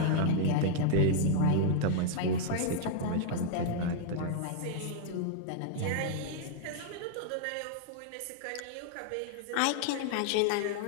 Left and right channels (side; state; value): both; different; correlation -0.01